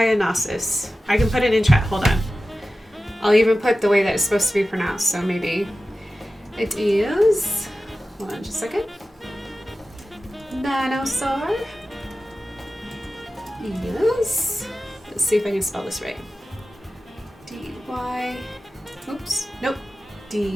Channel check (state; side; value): normal; both; correlation 0.94